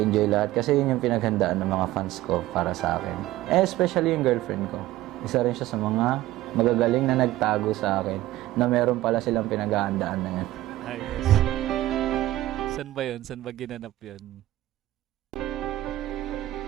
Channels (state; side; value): quieter; left; 15.8 dB